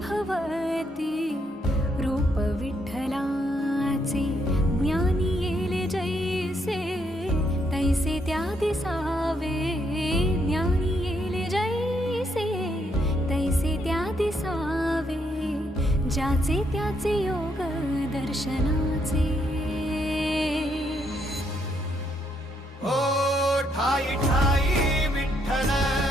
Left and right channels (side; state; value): both; normal; correlation 0.75